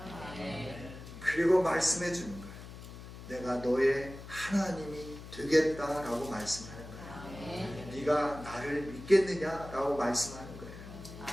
그리고 말씀해 주는 거예요. 내가 너의 하나님이 되겠다라고 말씀하는 거예요. 네가 나를 믿겠느냐라고 말씀하는 거예요.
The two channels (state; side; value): noise; left; hum, 13 dB below the sound